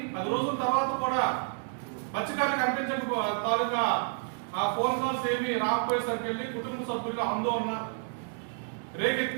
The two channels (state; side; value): silent; left; 58 dB below the other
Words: 10 రోజుల తర్వాత కూడా మత్స్యకారులకు కనిపించక తాలూకా ఆ ఫోన్ కాల్స్ ఏమి రాకపోయేసరికి వెళ్ళి కుటుంబ సభ్యులు ఆందోళన